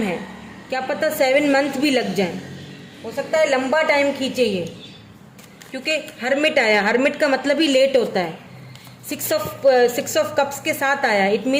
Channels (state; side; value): identical; both; correlation 1.00